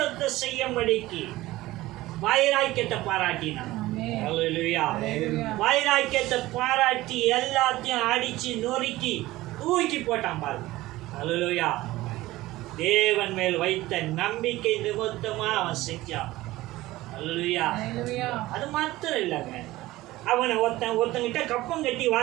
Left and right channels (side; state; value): left; quieter; 17.6 dB